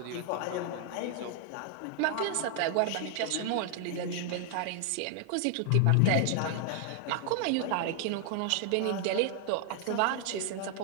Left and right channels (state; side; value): different; both; correlation 0.00